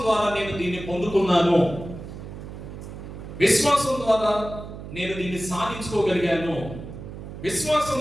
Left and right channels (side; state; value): right; noise; hum, 11 dB below the sound